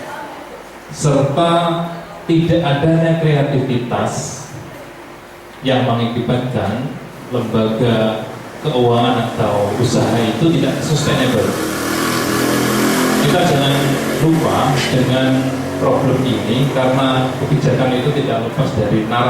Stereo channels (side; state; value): both; identical; correlation 1.00